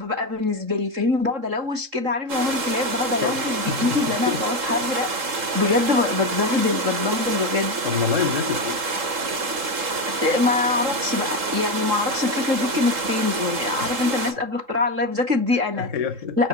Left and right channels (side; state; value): left; late; 3.7 ms